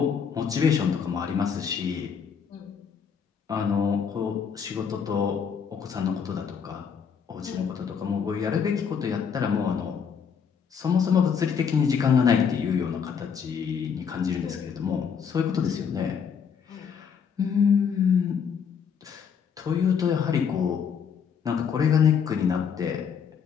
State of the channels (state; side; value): quieter; right; 7.0 dB